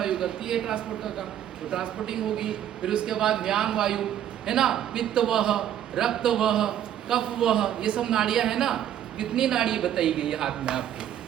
करती है ट्रांसपोर्टर का, तो ट्रांसपोर्टिंग होगी। फिर उसके बाद व्यान वायु, है ना, पित्त वह, रक्त वह, कफ वह, ये सब नाड़ियां है ना। कितनी नाड़ी बताई गई है हाथ में आपके,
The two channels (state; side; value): quieter; left; 10.7 dB